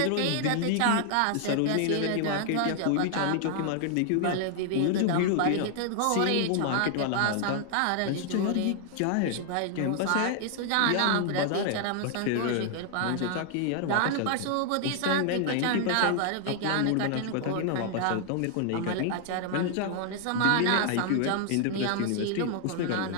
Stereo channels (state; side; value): different; both; correlation 0.00